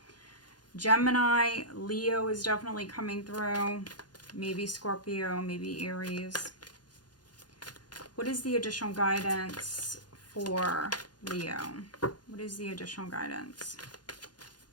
Gemini, Leo is definitely coming through. Maybe Scorpio, maybe Aries. What is the additional guidance for Leo? What is the additional guidance?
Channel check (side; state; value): right; late; 0.70 ms